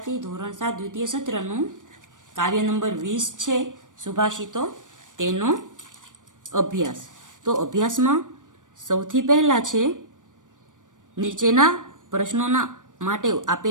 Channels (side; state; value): left; late; 0.87 ms